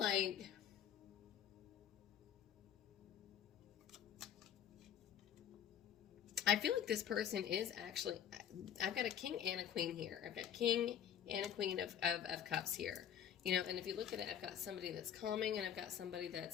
this person is actually, I've got a King and a Queen here. I've got King and a Queen of Cups here. You know, and if you look at it, I've got somebody that's calming, and I've got somebody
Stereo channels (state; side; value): quieter; right; 9.4 dB